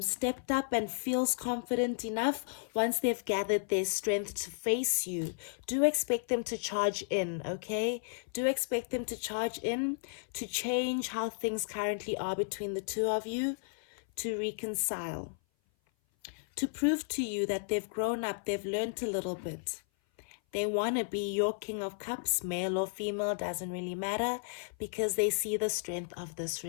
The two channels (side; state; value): right; silent; 55 dB below the other